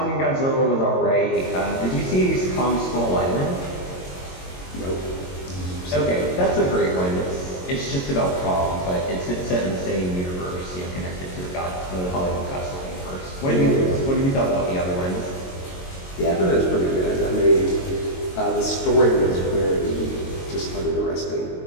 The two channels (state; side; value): late; right; 22 ms